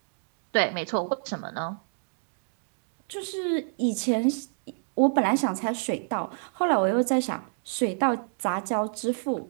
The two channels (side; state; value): left; silent; 59 dB below the other